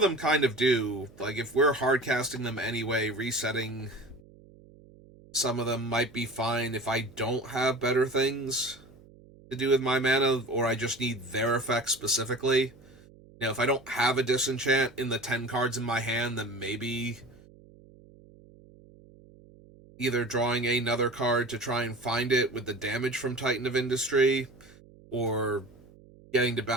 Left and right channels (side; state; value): right; noise; hum, 24 dB below the sound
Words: them kind of do. Like, if we're hard casting them anyway, resetting some of them might be fine if I don't have better things to do with my mana, or I just need their effects specifically. You know, if I don't have a disenchant in the 10 cards in my hand, then maybe either drawing another card to try and find it with the damage from Titan of Industry, or getting to